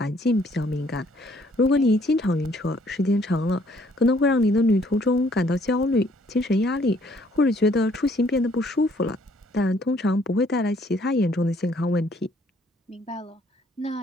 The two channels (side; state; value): both; normal; correlation 0.64